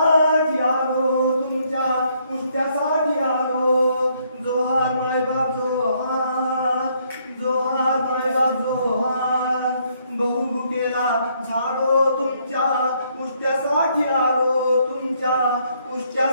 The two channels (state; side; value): inverted; both; correlation -0.70